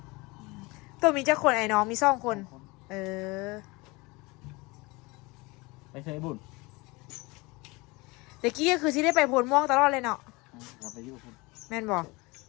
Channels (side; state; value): right; quieter; 24.5 dB